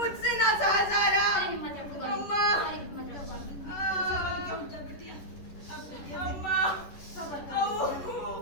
ना सहा जा रहा। अरे हिम्मत रखो गौरी। अम्मा। अरे हिम्मत रखो गौरी। अम्मा,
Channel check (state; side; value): late; right; 11 ms